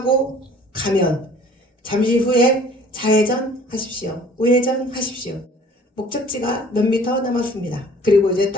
가면 잠시 후에 좌회전 하십시오. 우회전 하십시오. 목적지가 몇 미터 남았습니다. 그리고 이제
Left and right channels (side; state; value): both; normal; correlation 0.51